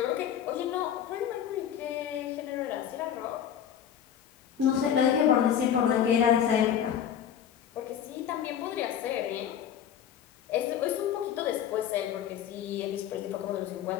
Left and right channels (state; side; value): quieter; right; 9.3 dB